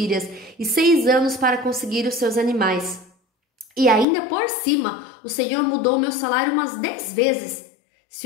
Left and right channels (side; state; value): right; drops out; at 4.0 s